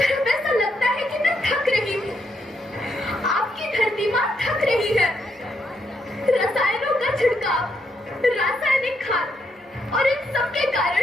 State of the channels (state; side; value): normal; both; correlation 0.78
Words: ऐसा लगता है कि मैं थक रही हूँ। आपकी धरती माँ थक रही है। रसायनों का छिड़काव, रासायनिक खाद और इन सब के